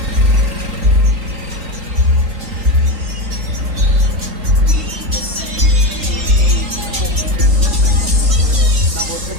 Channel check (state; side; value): late; left; 3.2 ms